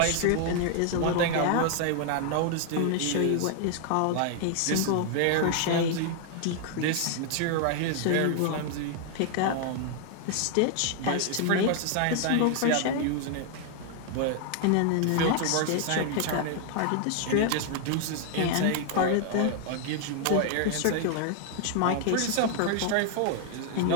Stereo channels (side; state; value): both; different; correlation 0.00